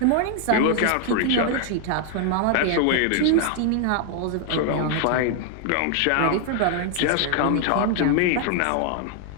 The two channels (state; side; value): different; both; correlation 0.00